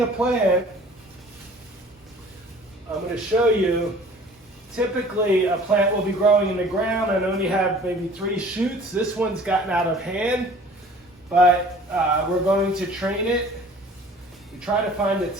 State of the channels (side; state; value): both; normal; correlation 0.48